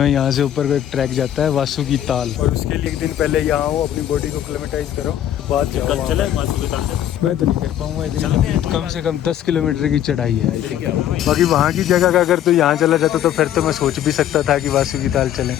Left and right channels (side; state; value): right; quieter; 11.1 dB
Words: हैं, यहाँ से ऊपर को एक ट्रैक जाता है वासुकी ताल। और उसके लिए एक दिन पहले यहाँ आओ, अपनी बॉडी को क्लेमेटाइज करो, बाद जाओ। मैं तो नहीं कर पाऊंगा इतनी, कम से कम 10 किलोमीटर की चढ़ाई है। बाकी वहाँ की जगह का अगर तो यहाँ चला जाता तो फिर तो मैं सोच भी सकता था कि वासुकी ताल चलें,